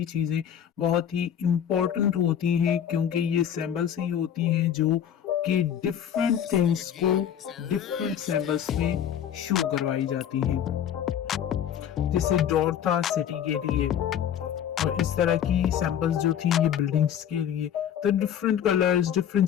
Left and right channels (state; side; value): quieter; right; 9.4 dB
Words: चीजें बहुत ही इम्पोर्टेंट होती हैं, क्योंकि ये सैंपल्स ही होती हैं जो कि डिफरेंट थिंग्स को डिफरेंट सैंपल्स में शो करवाई जाती हैं। जैसे डॉट था सिटी के लिए, और इस तरह की सैंपल्स जो थी ये बिल्डिंग्स के लिए। तो डिफरेंट कलर्स, डिफरेंट